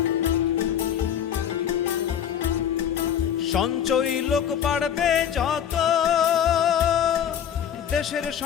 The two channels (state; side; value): quieter; right; 9.2 dB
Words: সঞ্চয়ী লোক বাড়বে যত, দেশের